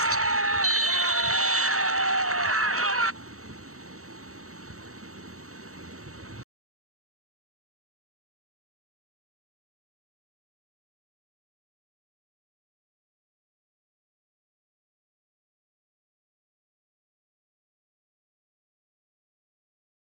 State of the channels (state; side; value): late; left; 0.64 ms